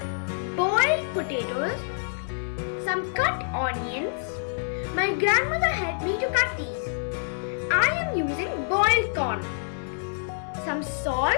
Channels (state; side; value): silent; right; 60 dB below the other